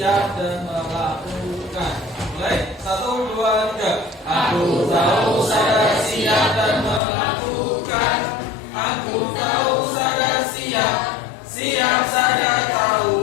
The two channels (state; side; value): drops out; right; at 7.0 s